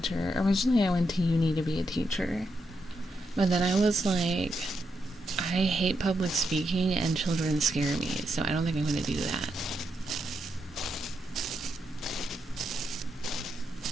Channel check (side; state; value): both; normal; correlation 0.82